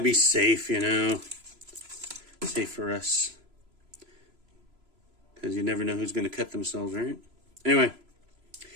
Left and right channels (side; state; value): left; late; 3.0 ms